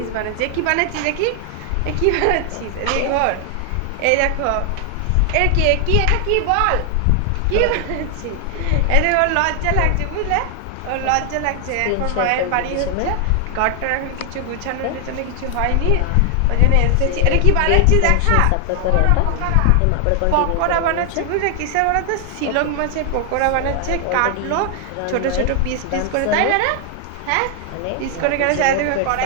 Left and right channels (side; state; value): both; different; correlation 0.00